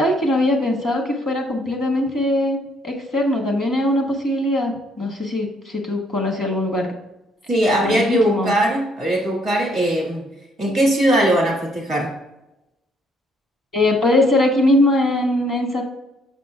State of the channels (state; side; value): normal; both; correlation 0.67